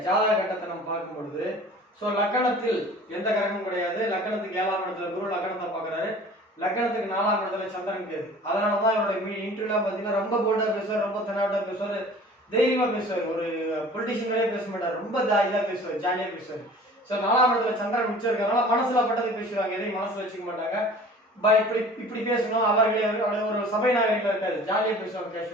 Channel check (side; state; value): both; normal; correlation 0.45